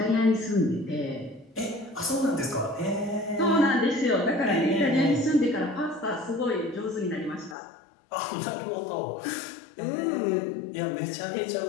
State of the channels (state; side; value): drops out; right; at 7.6 s